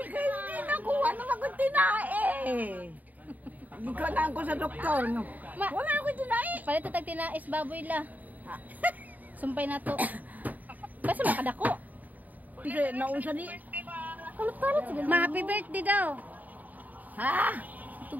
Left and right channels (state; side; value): late; left; 0.079 ms